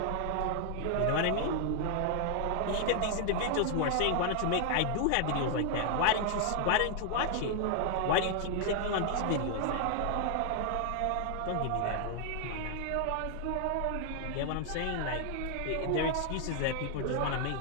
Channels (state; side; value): different; both; correlation 0.00